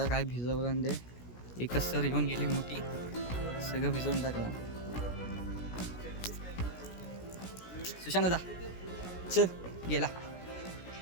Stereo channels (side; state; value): right; late; 17 ms